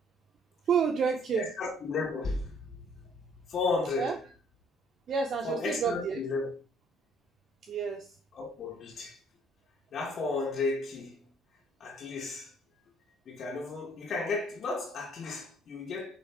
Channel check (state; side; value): normal; both; correlation 0.61